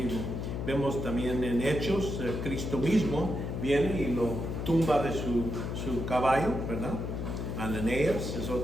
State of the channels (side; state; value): left; noise; hum, 4 dB below the sound